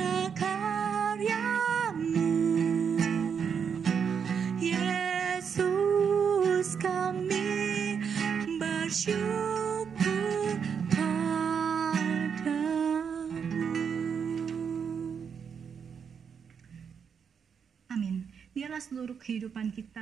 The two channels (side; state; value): left; quieter; 6.9 dB